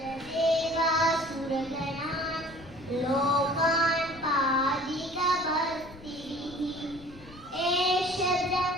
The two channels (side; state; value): left; noise; rumble, 19 dB below the sound